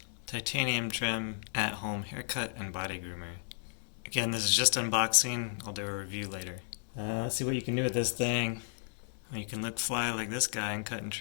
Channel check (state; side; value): silent; right; digital silence